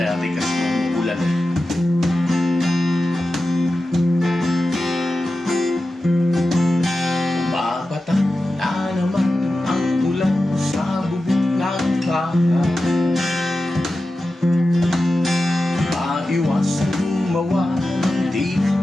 kasi ulan eh. Bumabatak na naman ang ulan sa bubong ng bahay. Maiwasan gumawa ng di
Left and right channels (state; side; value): normal; both; correlation 0.93